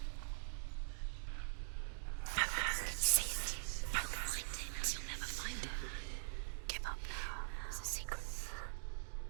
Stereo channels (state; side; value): silent; left; digital silence